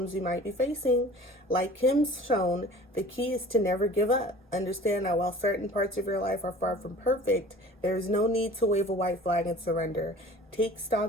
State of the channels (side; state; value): both; normal; correlation 0.45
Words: you might be facing. Like Kim's shown, the key is to never give up. Understand that while certain parts of your life are far from perfect, there is no need to wave a white flag and surrender. Take